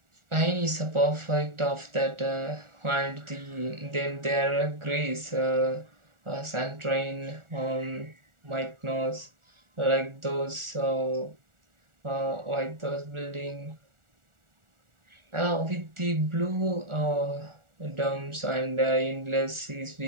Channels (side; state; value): left; late; 1.4 ms